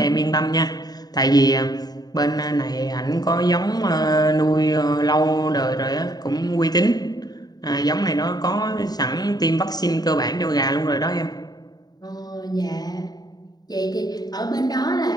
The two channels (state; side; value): late; right; 0.19 ms